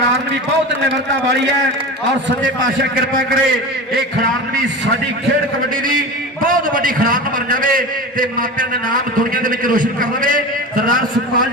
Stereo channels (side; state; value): both; normal; correlation 0.29